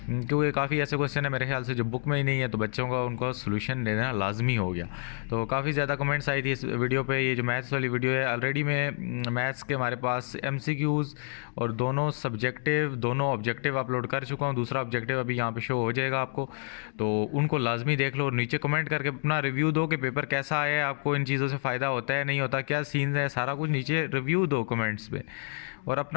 क्योंकि काफ़ी ऐसे क्वेश्चन है मेरे ख्याल से जो बुक में ही नहीं है, तो बच्चों का उनको सोल्यूशन देना लाजमी हो गया। तो काफ़ी ज़्यादा कमेंट्स आई थी इस वीडियो पे। ये जो मैथ्स वाली वीडियो है, ऑलरेडी मैं मैथ्स के हमारे पास एमसीक्यूज़ और दोनों सब्जेक्टिव दोनों ऑब्जेक्टिव अपलोड कर चुका हूँ। दूसरा ऑब्जेक्टिव अभी यहाँ पे शो हो जाएगा आपको, तो उनको लाजमी देख लो और नीचे कमेंट करके अपना रिव्यू दो कि पेपर कैसा आया है, आपको इन चीज़ों से फ़ायदा होता है नहीं होता, क्या सीन्स है, सारा कुछ नीचे रिव्यू दो कमेंट्स पे, और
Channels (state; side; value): silent; right; 59 dB below the other